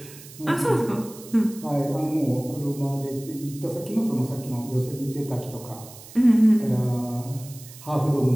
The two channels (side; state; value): right; noise; hiss, 18 dB below the sound